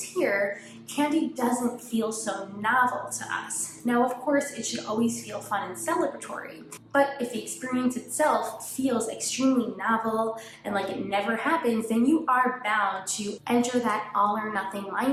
candy doesn't feel so novel to us. Now, of course, it should always feel fun and celebratory, but if the experience itself feels extremely novel and like it never happens, then you are bound to enter that all or nothing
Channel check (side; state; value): both; identical; correlation 1.00